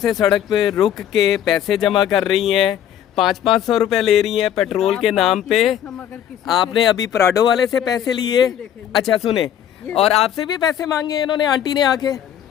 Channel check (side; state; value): right; quieter; 10.1 dB